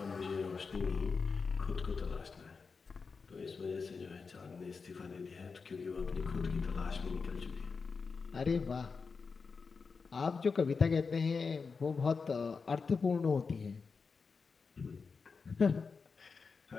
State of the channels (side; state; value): right; quieter; 4.9 dB